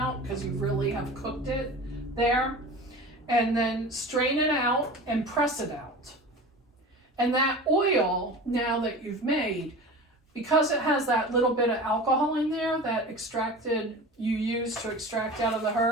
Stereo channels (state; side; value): normal; both; correlation 0.34